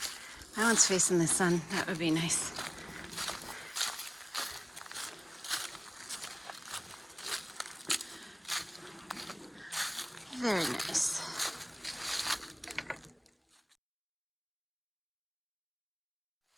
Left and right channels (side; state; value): both; identical; correlation 1.00